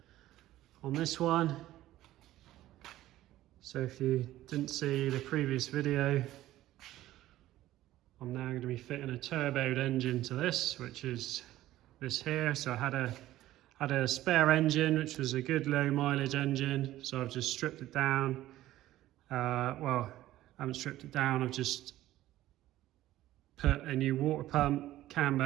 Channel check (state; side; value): quieter; left; 14.8 dB